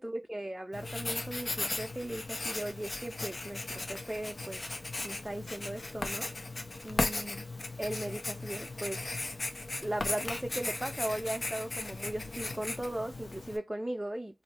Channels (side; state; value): both; normal; correlation 0.97